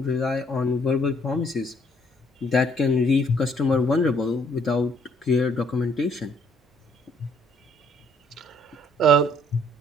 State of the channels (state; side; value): normal; both; correlation 0.64